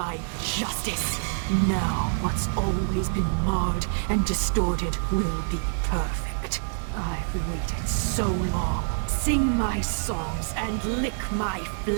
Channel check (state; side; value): silent; left; 59 dB below the other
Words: justice. Now, what's always been marred and distorted will be perfect. I've waited so long. Sing my songs and lick my